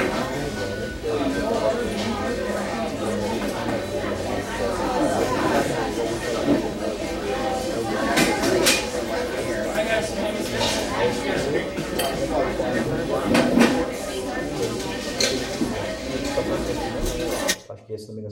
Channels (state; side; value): identical; both; correlation 1.00